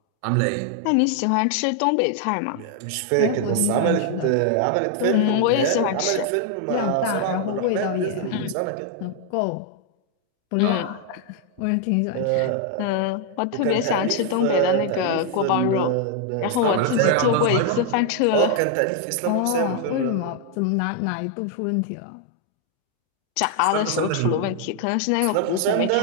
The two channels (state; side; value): different; both; correlation 0.00